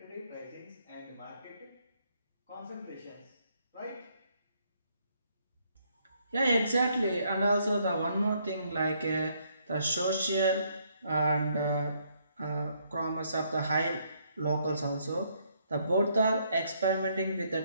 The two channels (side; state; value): both; inverted; correlation -0.71